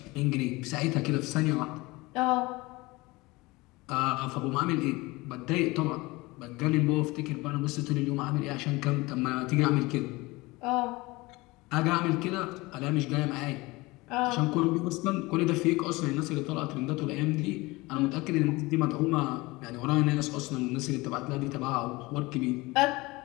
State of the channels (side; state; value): right; quieter; 22.2 dB